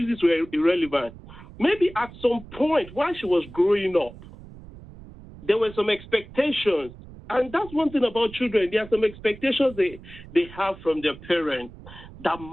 were irrelevant. Maybe at some point while she was growing up, there were some expectations. And that's one thing about children. There are some expectations they have from their parents that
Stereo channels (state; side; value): noise; right; rumble, 17 dB below the sound